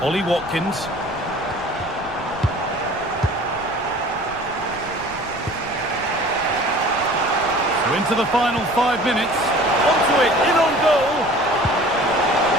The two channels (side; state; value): left; noise; rumble, 18 dB below the sound